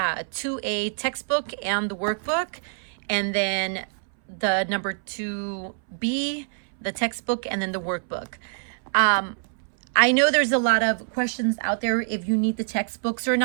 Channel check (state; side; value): silent; left; 61 dB below the other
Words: textbook and the workbook, and then the number 2B, the textbook, and then the workbook. I know there's a lot of questions out there if you need the textbooks or